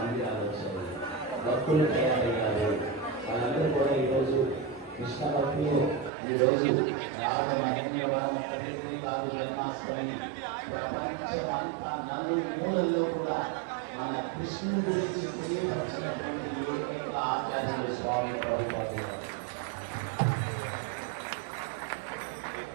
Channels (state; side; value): drops out; left; at 6.1 s